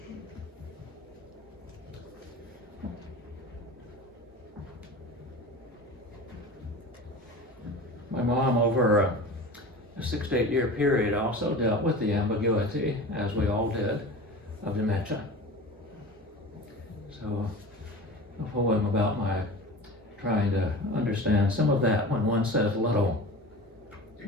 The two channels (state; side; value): normal; both; correlation 0.34